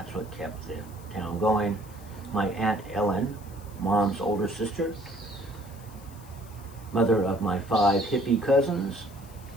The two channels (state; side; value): noise; left; hiss, 23 dB below the sound